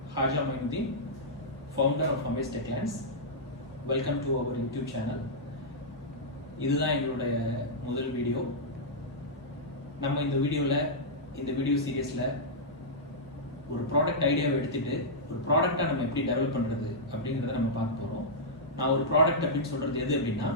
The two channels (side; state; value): both; normal; correlation -0.10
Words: Haja Mainuddin, founder of Amaze Techlands. Welcome to our YouTube channel. இதுதான் எங்களுடைய முதல் video. நம்ம இந்த வீடியோ சீரியஸில் ஒரு ப்ராடக்ட் ஐடியாவை எடுத்துட்டு ஒரு ப்ராடக்டை நம்ம எப்படி டெவலப் பண்ணுறது அப்படிங்கிறத நம்ம பார்க்க போகிறோம். நான் ஒரு ப்ராடக்ட் அப்படின்னு சொல்கிறது எது அப்படின்னா